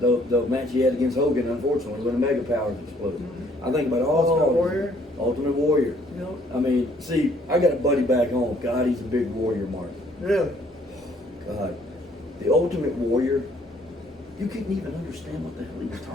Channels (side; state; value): both; normal; correlation 0.63